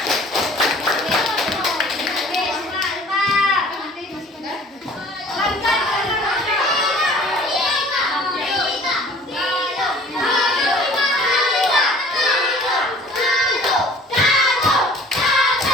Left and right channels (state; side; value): normal; both; correlation 0.50